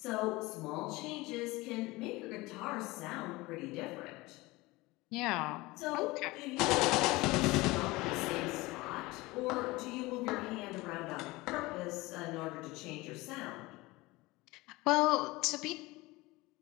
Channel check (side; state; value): right; quieter; 21.4 dB